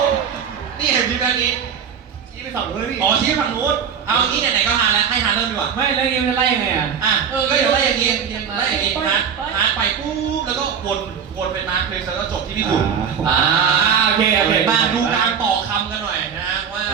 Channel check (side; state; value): left; quieter; 7.3 dB